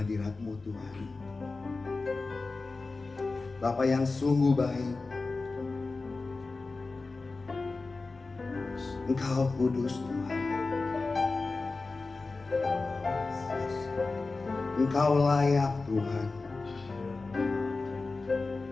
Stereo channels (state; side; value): quieter; right; 3.7 dB